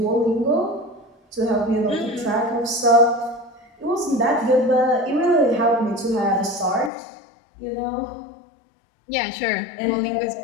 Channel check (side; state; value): right; drops out; at 6.9 s